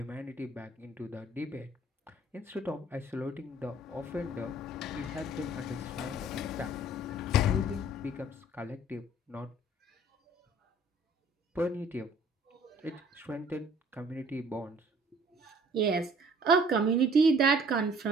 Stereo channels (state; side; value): normal; both; correlation 0.54